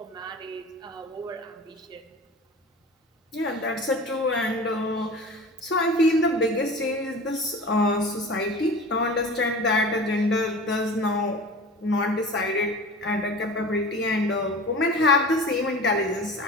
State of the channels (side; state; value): both; normal; correlation 0.36